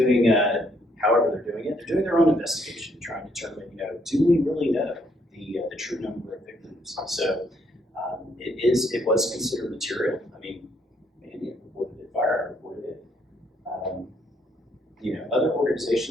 however they're doing it, they're doing their own investigation, trying to determine, do we really know the true number of victims? So it was considered material. I mean, Mandy reported it, Fire reported it. Other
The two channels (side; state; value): both; normal; correlation 0.70